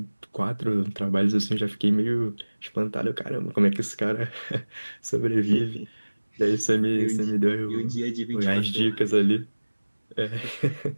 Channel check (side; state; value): both; inverted; correlation -1.00